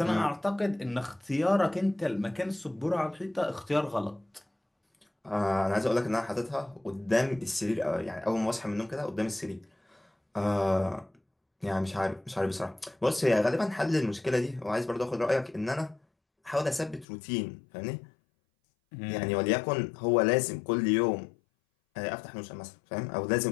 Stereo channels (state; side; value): drops out; right; at 17.1 s